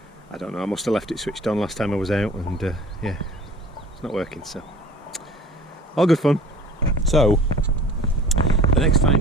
I don't know. I must have left it switched on last time I was out, and yeah, it's not working. So all good fun. So the next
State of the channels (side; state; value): both; normal; correlation 0.46